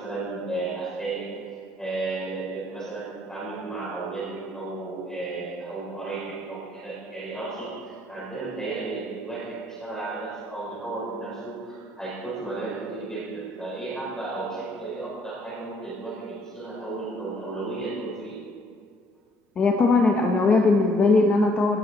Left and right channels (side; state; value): both; normal; correlation 0.64